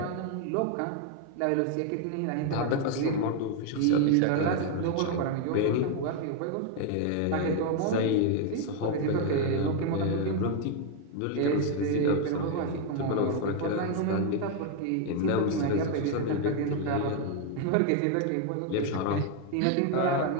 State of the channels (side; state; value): both; different; correlation 0.01